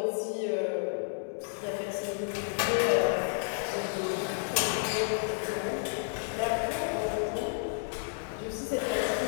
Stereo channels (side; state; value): right; silent; 57 dB below the other